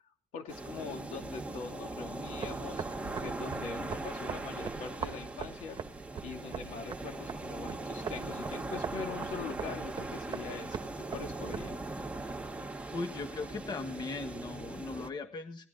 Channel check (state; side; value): normal; both; correlation 0.64